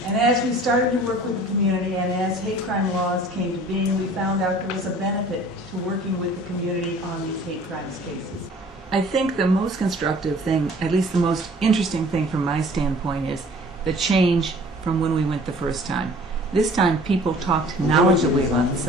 And as we started to work with the community and as hate crime laws came to being, we found out there was a benefit to working with the community on these hate crimes cases. I think the most constructive thing, at least the most interesting thing from my standpoint, is the change from when we went the first time. This time people talked knowledgeably about the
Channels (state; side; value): normal; both; correlation 0.49